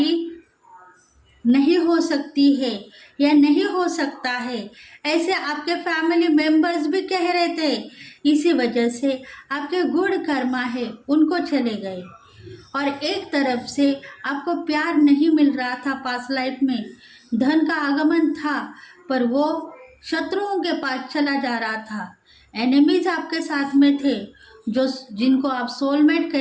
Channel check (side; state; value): both; identical; correlation 1.00